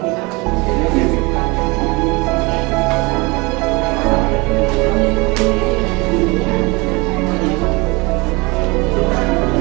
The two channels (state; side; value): quieter; left; 25.7 dB